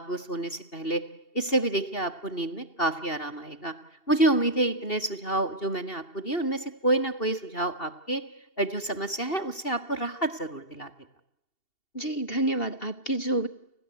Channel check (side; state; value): right; late; 2.7 ms